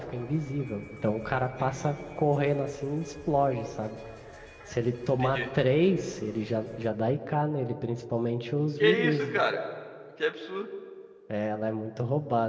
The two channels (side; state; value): both; identical; correlation 1.00